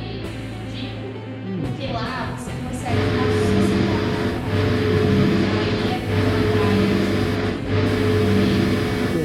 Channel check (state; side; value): identical; both; correlation 1.00